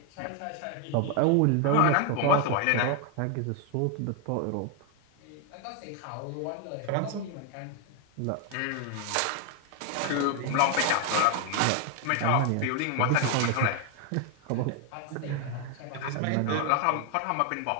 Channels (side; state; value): both; different; correlation 0.01